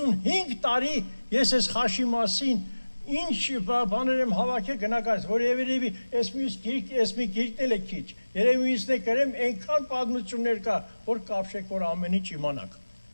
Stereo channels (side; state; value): both; inverted; correlation -1.00